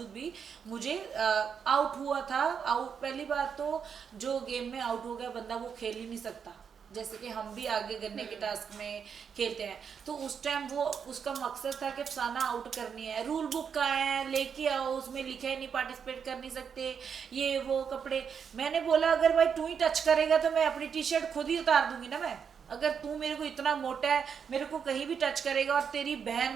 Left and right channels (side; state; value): left; quieter; 6.9 dB